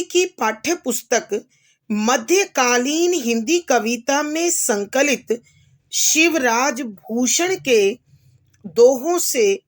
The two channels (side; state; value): both; identical; correlation 1.00